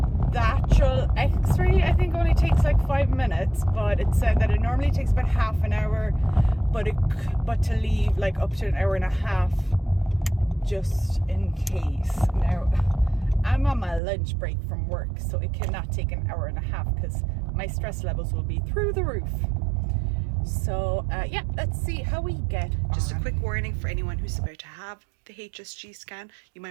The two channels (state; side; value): drops out; left; at 14.0 s